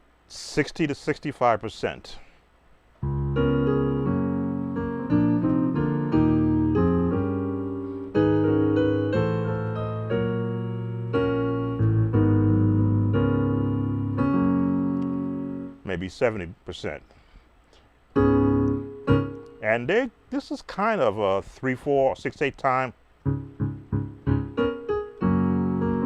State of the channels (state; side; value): identical; both; correlation 1.00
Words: $60 to 65%. Maybe 70%. And this is kind of a 3, 4, 6, 8 time.